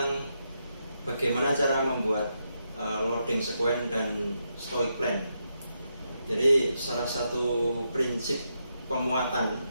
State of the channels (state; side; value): inverted; both; correlation -0.83